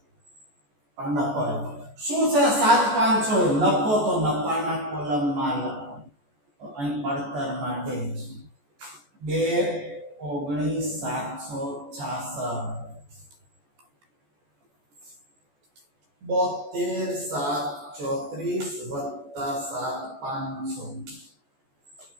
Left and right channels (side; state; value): left; late; 14 ms